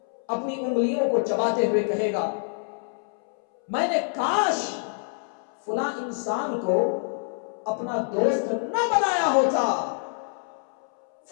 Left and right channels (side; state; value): right; silent; 61 dB below the other